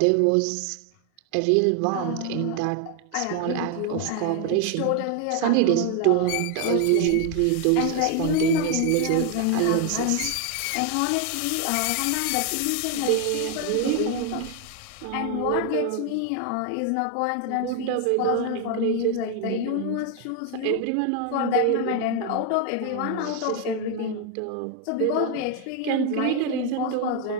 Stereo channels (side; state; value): both; different; correlation 0.01